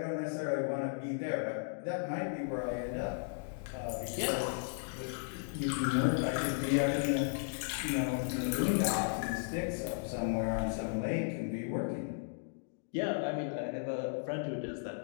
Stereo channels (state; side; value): silent; right; digital silence